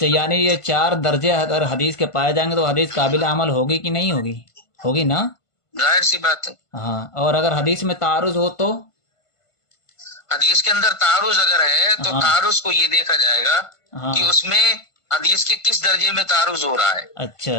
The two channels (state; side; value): late; right; 1.5 ms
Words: یعنی یہ 4 درجے اگر حدیث کے پائے جائیں گے تو حدیث قابل عمل ہوگی کہ نہیں ہوگی؟ ہوگی نا؟ ظاہر سی بات ہے۔ ہاں، اور اگر حدیث میں تعارض ہو تو؟ حدیث کے اندر تعارض اگر ہے تو تعارض کو یہ دیکھا جائے گا کہ اس میں حدیث کے کس درجے میں تعارض ہو رہا ہے۔